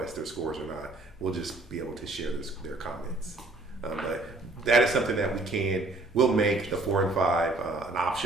their scores or not. We'll just be able to share their comments. But that is something that we'll make the 4 and 5 an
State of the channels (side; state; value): left; quieter; 3.0 dB